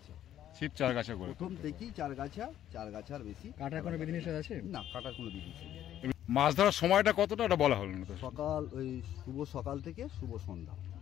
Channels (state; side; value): quieter; right; 11.5 dB